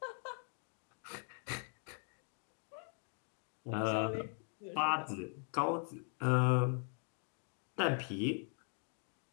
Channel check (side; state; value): right; silent; 51 dB below the other